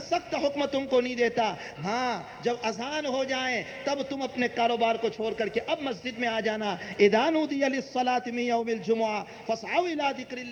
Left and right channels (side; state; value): both; identical; correlation 1.00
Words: سخت حکم تم کو نہیں دیتا۔ ہاں جب اذان ہو جائیں تب تم اپنے کاروبار کو چھوڑ کر کے اب مسجد میں آ جانا۔ اذا نودی للصلاة من یوم الجمعہ فاسعوا الی ذکر